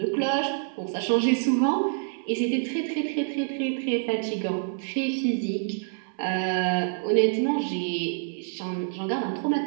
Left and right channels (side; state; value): left; silent; 60 dB below the other